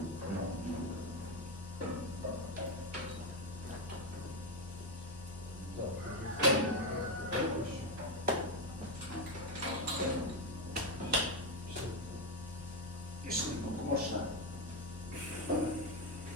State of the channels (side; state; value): both; normal; correlation 0.09